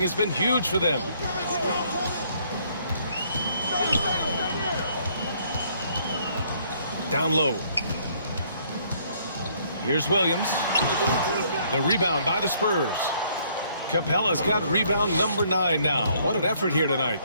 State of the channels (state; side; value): inverted; both; correlation -0.65